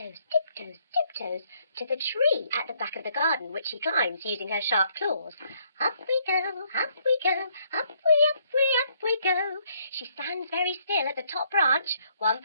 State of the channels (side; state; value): both; inverted; correlation -0.69